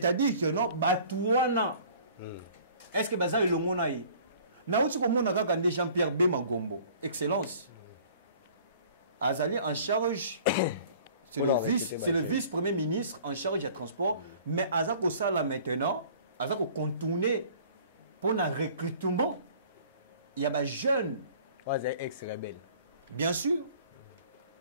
que non, Batouana. Est-ce que Baza est le monde aïe? Naouti comme on a regardé Jean-Pierre Bema Gombo. Excellence. Azali en charge, c'est le vice-premier ministre en charge du transport, mais Azako ça là maintenant, Azako contourner pour un recrutement. Il y a des jeunes. Ex-rebelle. Bien sûr.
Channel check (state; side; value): inverted; both; correlation -0.50